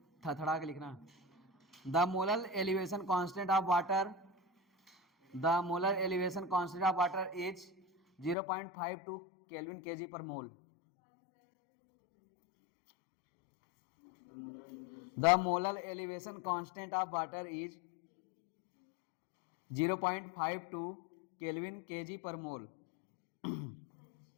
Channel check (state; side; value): drops out; right; at 8.3 s